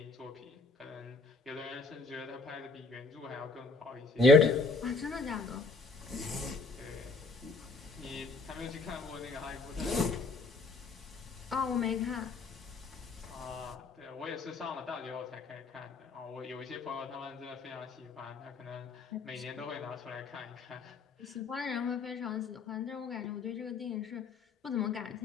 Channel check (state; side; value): quieter; right; 3.9 dB